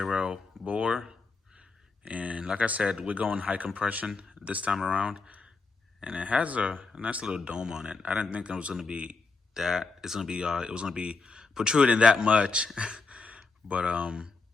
bore, and like I said, we're going high compression this time around. And it has a nice little dome on it. I didn't think it was gonna be that. It was gonna be protruding that much, but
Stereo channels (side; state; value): right; quieter; 4.2 dB